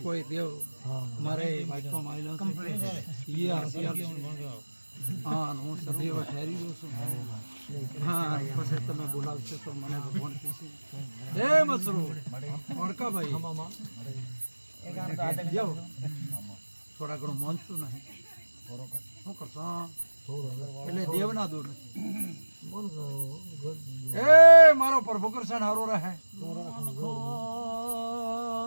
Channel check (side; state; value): both; inverted; correlation -1.00